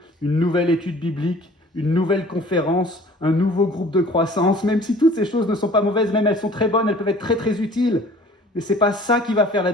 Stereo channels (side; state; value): both; normal; correlation 0.50